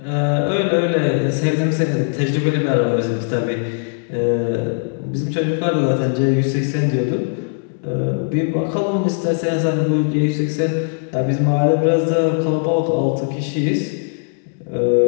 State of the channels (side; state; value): right; silent; 58 dB below the other